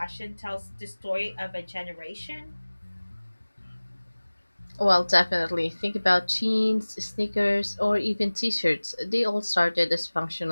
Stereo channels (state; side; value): inverted; both; correlation -1.00